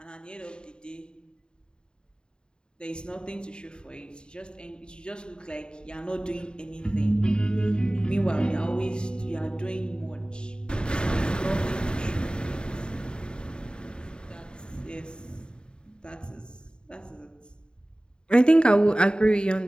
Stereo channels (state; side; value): late; right; 0.050 ms